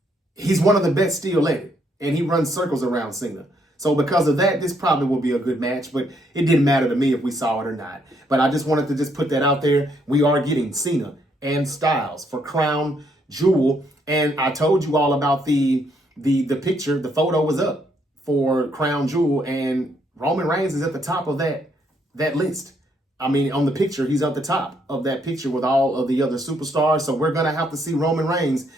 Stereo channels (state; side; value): normal; both; correlation 0.72